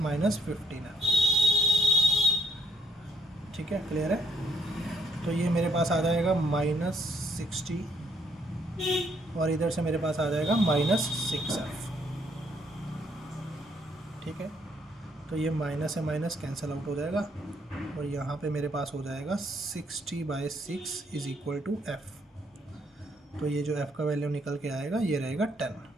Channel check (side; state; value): both; normal; correlation 0.68